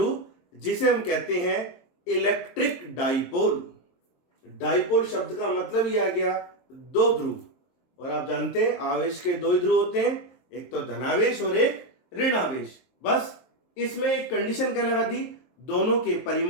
जिसे हम कहते हैं इलेक्ट्रिक डाइपोल। डाइपोल शब्द का मतलब ही आ गया दो ध्रुव, और आप जानते हैं आवेश के दो ध्रुव होते हैं, एक तो धनावेश और एक ऋणावेश। बस इसमें एक कंडीशन क्या लगा दी? दोनों के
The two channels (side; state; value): right; late; 23 ms